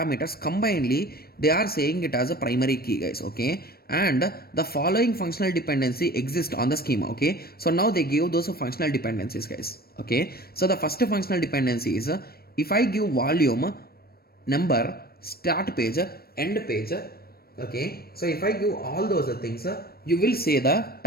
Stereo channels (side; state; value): right; late; 0.44 ms